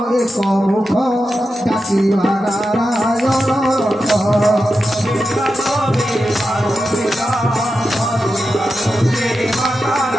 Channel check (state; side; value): normal; both; correlation 0.90